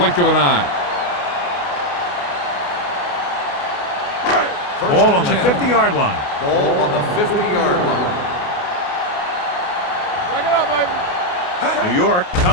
of an eye. Ball on the 50-yard line. Ball on the 50-yard line. Break it up, baby. New York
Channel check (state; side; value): late; right; 28 ms